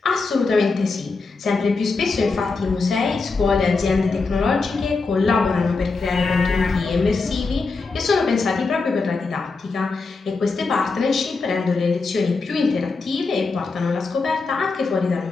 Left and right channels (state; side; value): quieter; right; 4.1 dB